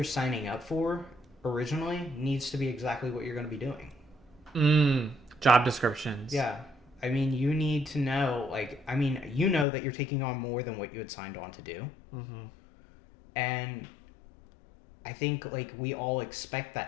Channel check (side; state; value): right; drops out; at 9.7 s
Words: signing up for originally needs to be exactly what you're going to be doing. Job descriptions. Yeah. I mean, you need to know, like, that you're taking on more than what you had signed on to do. And I think, like, we all expect